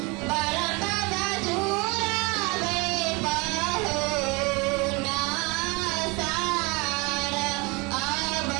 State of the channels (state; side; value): quieter; left; 27.5 dB